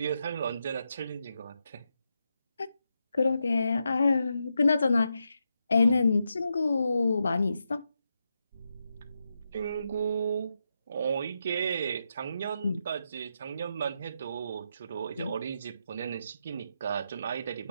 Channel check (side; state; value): both; inverted; correlation -0.84